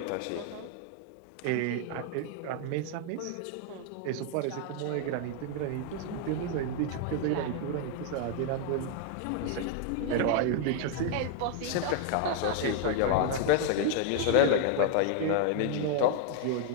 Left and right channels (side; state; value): both; different; correlation 0.00